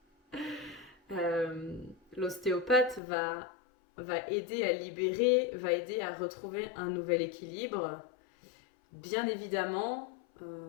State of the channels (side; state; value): right; drops out; at 3.0 s